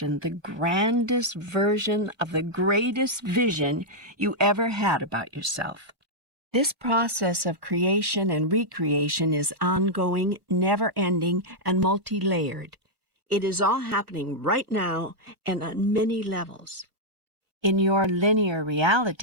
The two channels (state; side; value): late; left; 1.2 ms